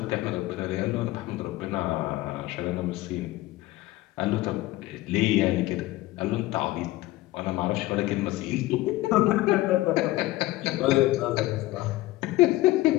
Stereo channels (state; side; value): quieter; right; 17.7 dB